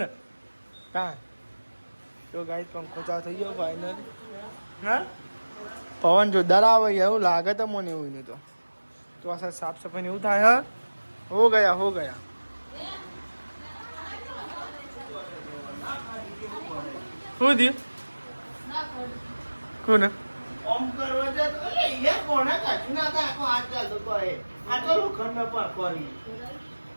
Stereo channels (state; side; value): inverted; both; correlation -1.00